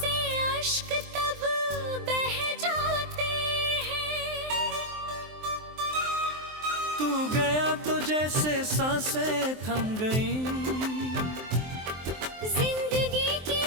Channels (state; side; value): late; left; 23 ms